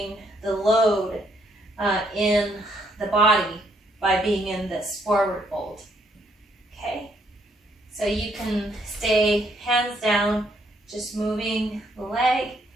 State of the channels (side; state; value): both; normal; correlation 0.71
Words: the load in the body by being in this forward fold. Okay, so you can stay hands down, just moving the leg,